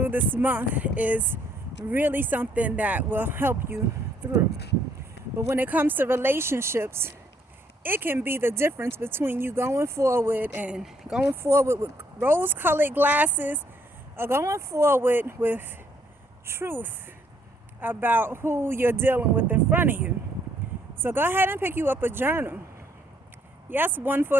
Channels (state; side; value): normal; both; correlation 0.68